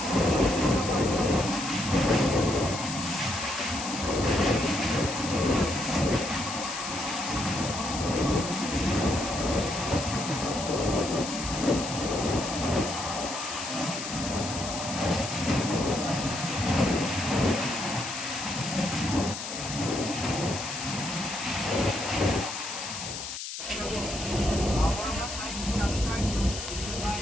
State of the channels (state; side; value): noise; left; hiss, 7 dB below the sound